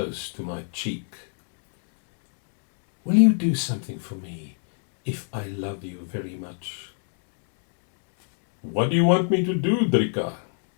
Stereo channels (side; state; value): right; silent; 60 dB below the other